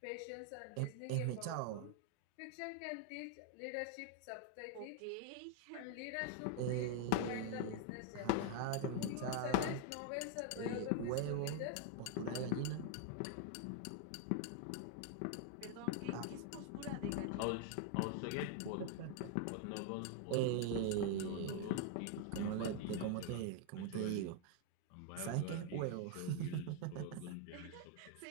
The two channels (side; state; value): both; different; correlation 0.00